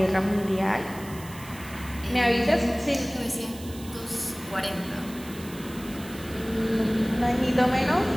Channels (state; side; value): noise; right; hiss, 17 dB below the sound